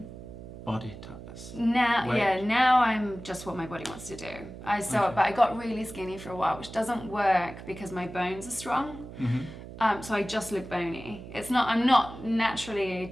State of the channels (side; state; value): right; noise; hum, 13 dB below the sound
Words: body type? Now I'm just what my body wants to do. But I got really skinny for a while, which doesn't work because my bones are strong. So I just look bony. I'm not naturally a